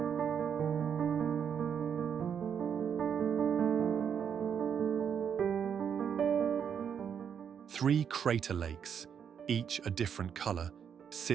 Three crater lakes, each a different color,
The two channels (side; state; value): left; quieter; 7.7 dB